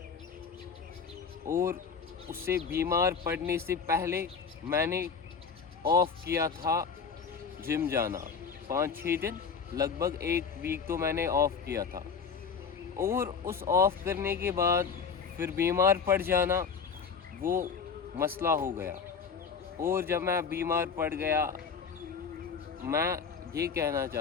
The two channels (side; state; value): right; quieter; 5.9 dB